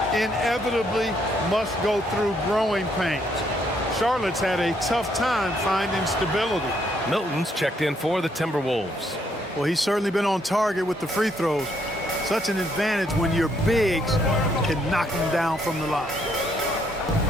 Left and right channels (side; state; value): both; normal; correlation 0.71